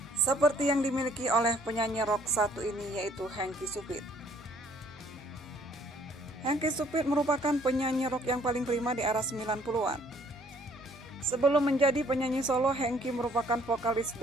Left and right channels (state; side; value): normal; both; correlation 0.61